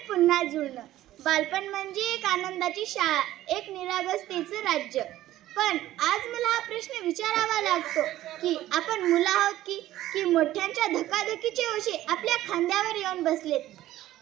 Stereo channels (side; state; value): left; quieter; 14.5 dB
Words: पुन्हा जुळणं. बालपण म्हणजे एक आनंदाची शाळा, एक निरागसतेचं राज्य. पण आज मला हा प्रश्न विचारावा लागतो की आपण मुलं आहोत की मोठ्यांच्या धकाधकीचे ओझे आपल्या खांद्यावर येऊन बसलेत.